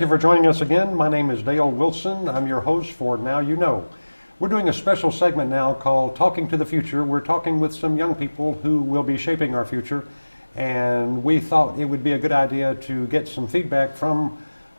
you for joining us again. My name is Dale Wilson. I'm your host for Now You Know. We're doing a special segment now called Talking to the Future. We're talking with some young people who will be shaping our future, and we thought it would be a good idea to get some feedback from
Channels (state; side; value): inverted; both; correlation -1.00